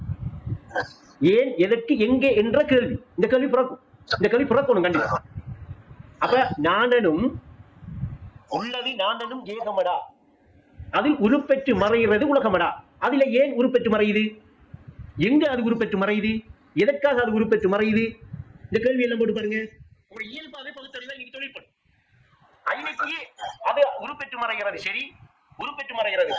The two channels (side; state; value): both; identical; correlation 1.00